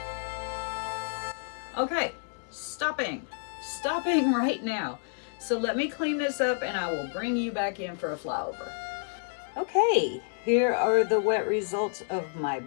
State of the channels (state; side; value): silent; right; digital silence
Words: Okay, stopping right now. So let me clean this up and I will bring you back in for a flyover. Okay, here are the wet results of my